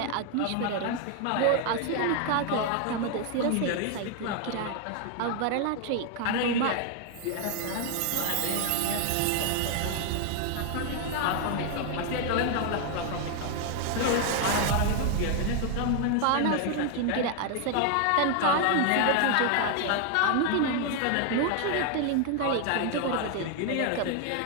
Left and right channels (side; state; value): both; different; correlation 0.00